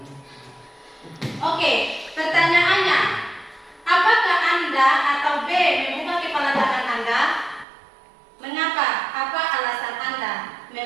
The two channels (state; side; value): drops out; left; at 7.7 s